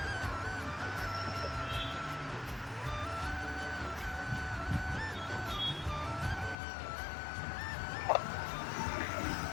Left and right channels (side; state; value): right; drops out; at 6.6 s